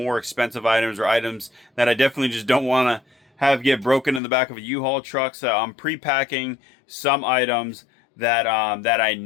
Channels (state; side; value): drops out; right; at 4.2 s